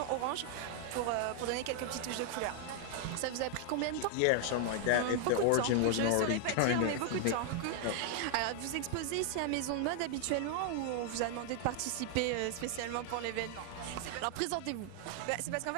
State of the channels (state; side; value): different; both; correlation 0.00